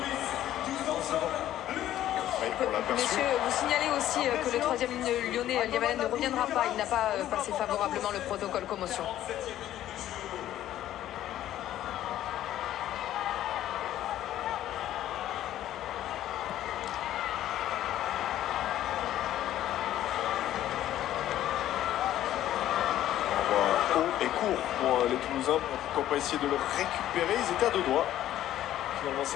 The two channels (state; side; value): quieter; right; 12.7 dB